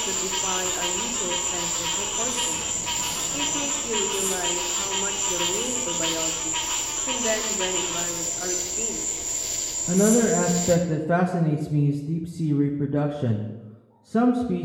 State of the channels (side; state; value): both; identical; correlation 1.00